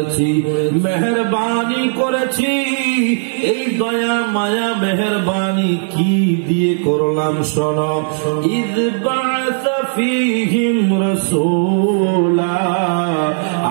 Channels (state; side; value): silent; left; digital silence